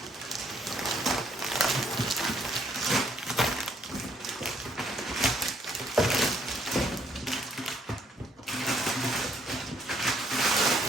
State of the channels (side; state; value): both; normal; correlation 0.68